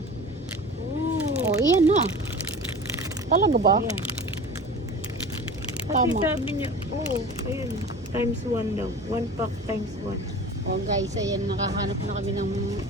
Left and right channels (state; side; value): normal; both; correlation 0.37